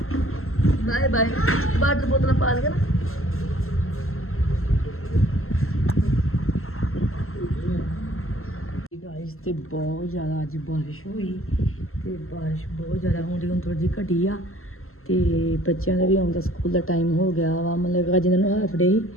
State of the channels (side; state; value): right; late; 0.62 ms